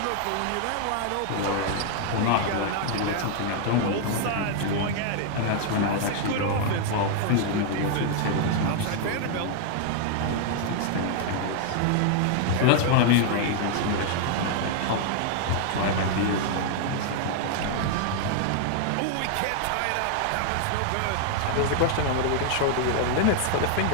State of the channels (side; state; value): both; different; correlation 0.00